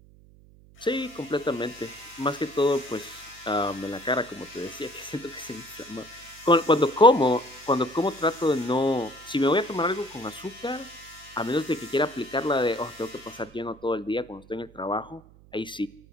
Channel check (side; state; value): right; noise; hum, 25 dB below the sound